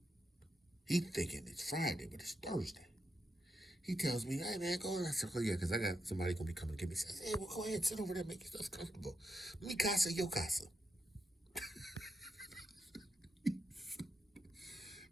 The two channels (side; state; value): both; normal; correlation 0.84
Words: He thinking it's Friday, but it's Thursday. He tells me, hey, man, go. I said, oh, yeah, because I got somebody going to be coming to get me. He says, hey, well, go ahead, sit over there, make yourself comfortable. Mi casa, yo casa.